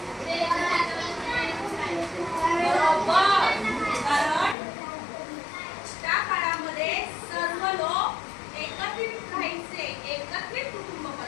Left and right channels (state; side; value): drops out; right; at 4.5 s